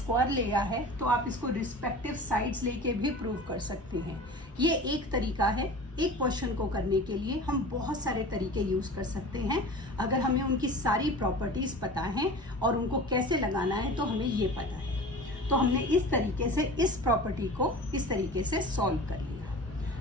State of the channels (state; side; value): normal; both; correlation 0.37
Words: लिया है तो आप इसको रिस्पेक्टिव साइड्स लेके भी प्रूव कर सकते हैं। ये एक तरीका है। एक क्वेश्चन को करने के लिए हम बहुत सारे तरीके यूज कर सकते हैं। अगर हमें उनकी सारी प्रॉपर्टीज पता है और उनको कैसे लगाना है तो हमें ये पता है। तो हमने इस तरीके से इस प्रॉपर्टी को इस तरीके से सॉल्व कर लिया।